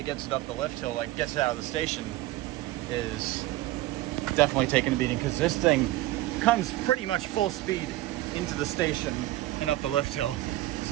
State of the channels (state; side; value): quieter; left; 16.8 dB